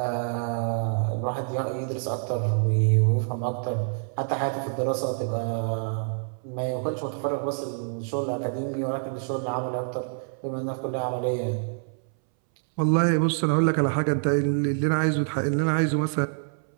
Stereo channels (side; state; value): left; silent; 61 dB below the other